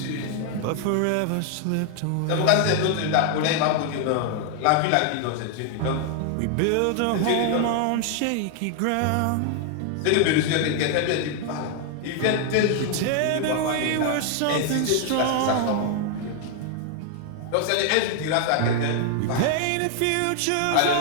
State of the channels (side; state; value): both; different; correlation 0.00